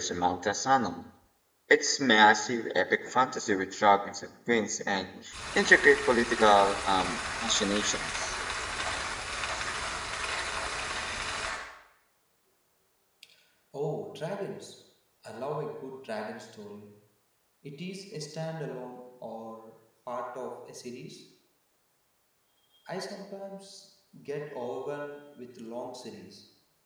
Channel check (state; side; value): identical; both; correlation 1.00